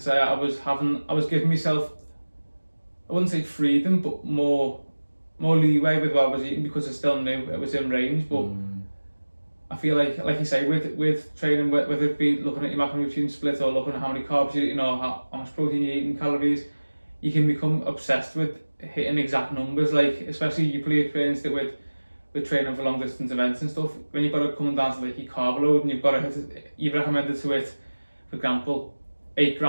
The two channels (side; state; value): both; inverted; correlation -1.00